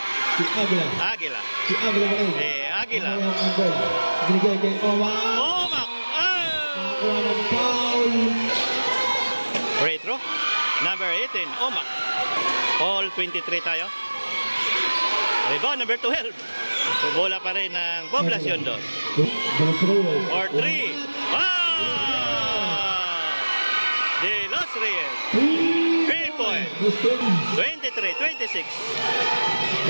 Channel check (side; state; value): both; inverted; correlation -1.00